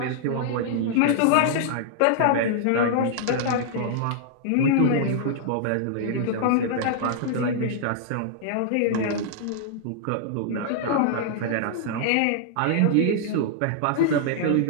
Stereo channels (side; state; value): both; different; correlation -0.01